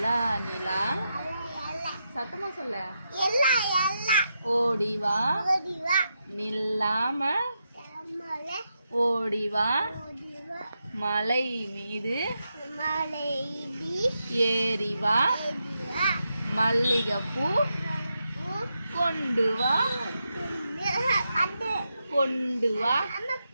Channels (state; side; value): inverted; both; correlation -0.85